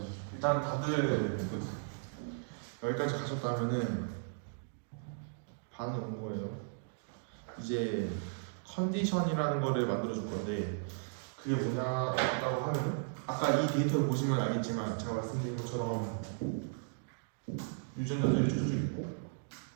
일단 다들 여기까지 가셨다면은 반은 온 거예요. 이제 컨디션이라는 거를 만들어 줄 건데 그게 뭐냐라고 하면 아까 이 데이터를 보시면 알겠지만 제가 말씀드린 것처럼 유전자들이 쭉쭉 있고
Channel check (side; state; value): left; silent; digital silence